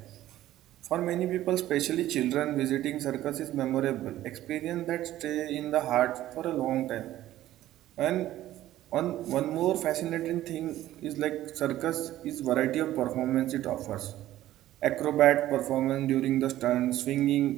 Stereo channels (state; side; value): quieter; left; 14.1 dB